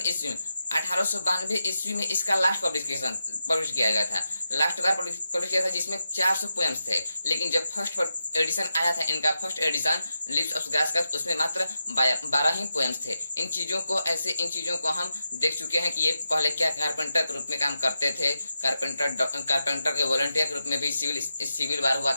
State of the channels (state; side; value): inverted; both; correlation -0.88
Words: ईस्वी में 1892 ईस्वी में इसका लास्ट पब्लिश किया गया था, लास्ट बार पब्लिश किया था, जिसमें 400 पोएम्स थे। लेकिन जब फर्स्ट एडिशन आया था इनका, first edition lips of grass का, उसमें मात्र 12 ही पोएम्स थे। इन चीजों को हम देख चुके हैं कि ये पहले क्या कारपेंटर के रूप में काम करते थे, कारपेंटर के वॉलंटियर के रूप में भी सिविल वार हुआ